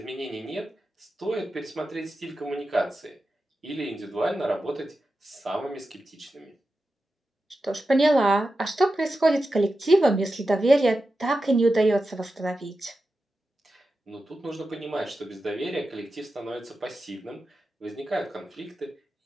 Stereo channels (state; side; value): normal; both; correlation 0.91